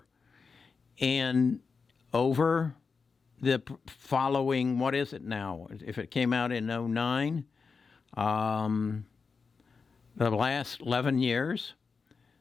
And over the following, what is it now? If it came out in 2009, the last 11 years,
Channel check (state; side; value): quieter; right; 5.0 dB